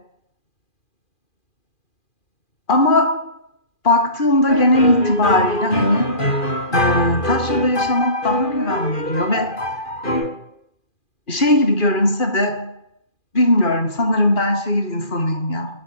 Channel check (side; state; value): right; late; 2.4 ms